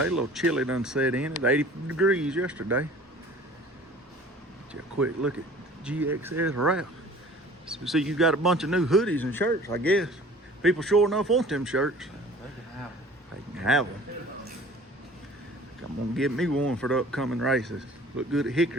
a little chilly done set in. It's 80 degrees yesterday. Just a quick look at GXS Wrap. So see, you got a bunch of new hoodies and shirts, I guess. People sure enough want them shirts. They can have them. I'm gonna get me one for the upcoming races. Look good at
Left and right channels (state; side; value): normal; both; correlation 0.47